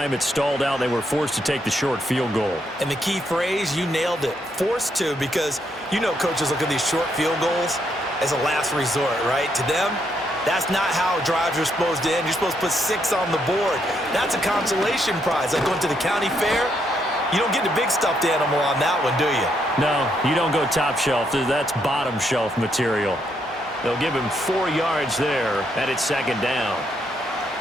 it stalled out. They were forced to take the short field goal. And the key phrase, you nailed it, forced to, because you know coaches look at these short field goals as a last resort, right? To them, that's not how drives are supposed to end. You're supposed to put 6 on the board. That's a consolation prize. Like going to the county fair, you don't get the big stuffed animal on that one, do you? No, you don't go top shelf. That's bottom shelf material. They'll give him 4 yards there, and it's 2nd down.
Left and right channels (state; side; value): normal; both; correlation 0.76